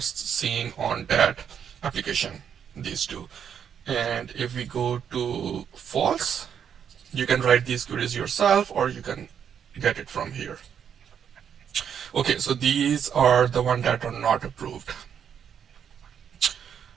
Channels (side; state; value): left; quieter; 8.2 dB